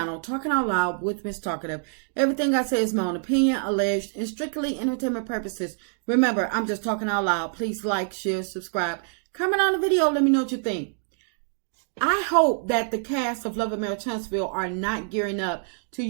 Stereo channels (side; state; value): left; silent; digital silence